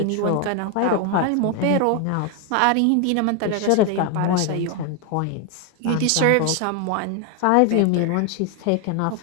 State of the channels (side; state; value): both; different; correlation 0.01